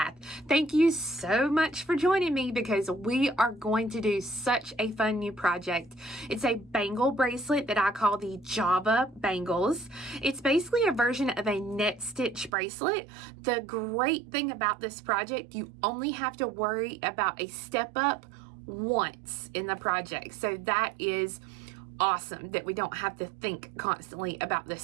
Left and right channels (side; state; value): left; drops out; at 12.5 s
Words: Thank you so much for joining me because we are going to do such a fun new project. It's a bangle bracelet that I call the Java Bangles. It's basically a version of a net stitch bracelet. The great thing about this project, you only have to worry about a step up once in the project. So that is awesome that we don't have to think constantly about this